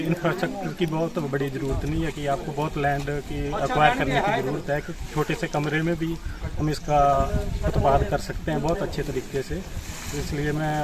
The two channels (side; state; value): both; identical; correlation 1.00